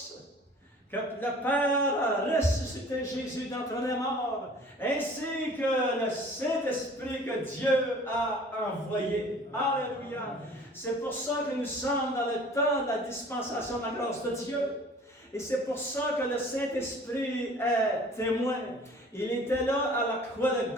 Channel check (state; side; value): normal; both; correlation 0.48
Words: que le Père a ressuscité Jésus d'entre les morts, ainsi que le Saint-Esprit que Dieu a envoyé. Alléluia! C'est pour ça que nous sommes dans le temps de la dispensation de la grâce de Dieu. Et c'est pour ça que le Saint-Esprit est témoin. Il était là à la croix de